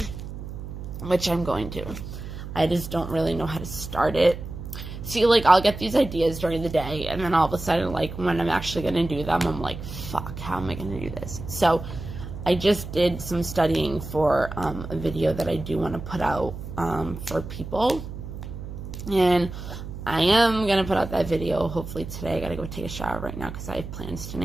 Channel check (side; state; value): right; noise; hum, 9 dB below the sound